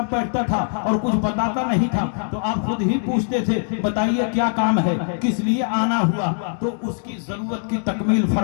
بیٹھتا تھا اور کچھ بتاتا نہیں تھا تو آپ خود ہی پوچھتے تھے بتائیے کیا کام ہے، کس لیے آنا ہوا، تو اس کی ضرورت کی تکمیل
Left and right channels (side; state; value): right; silent; 62 dB below the other